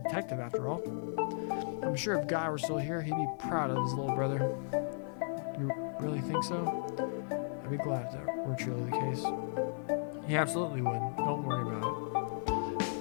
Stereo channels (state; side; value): silent; right; digital silence